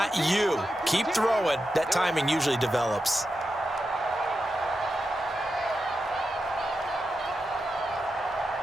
you. Keep throwing. That timing usually develops.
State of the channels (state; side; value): normal; both; correlation 0.89